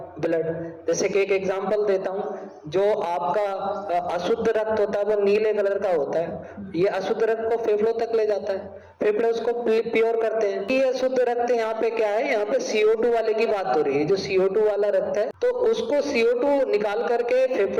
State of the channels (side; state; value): both; identical; correlation 1.00